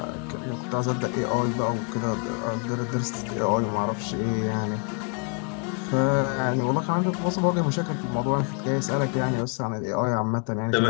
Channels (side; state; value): right; quieter; 38.9 dB